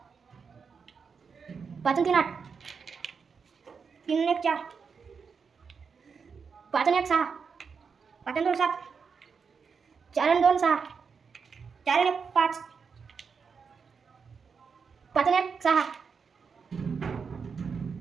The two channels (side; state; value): left; quieter; 5.7 dB